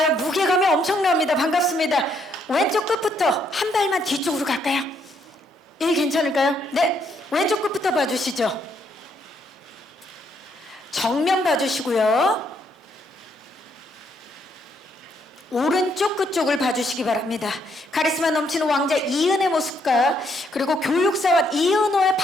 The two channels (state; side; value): normal; both; correlation 0.72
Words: 무게감이 엄청납니다. 반갑습니다. 왼쪽 끝부터 한 발만 뒤쪽으로 갈까요? 예, 괜찮을까요? 네, 왼쪽 끝부터 봐주시죠. 정면 봐주시고요. 오른쪽 끝쪽을 봐주시기 바랍니다. 카리스마 넘치는 왕자 이은의 모습과 그리고 교육사원 이은호의